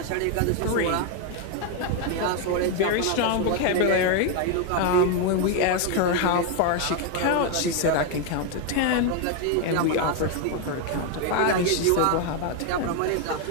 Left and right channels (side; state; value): both; different; correlation 0.01